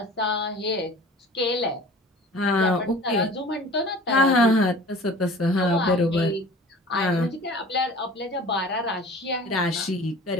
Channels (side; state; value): both; normal; correlation 0.43